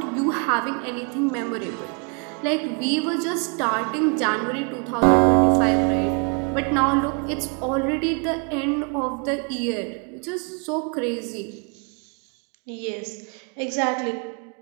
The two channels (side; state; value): left; quieter; 37.5 dB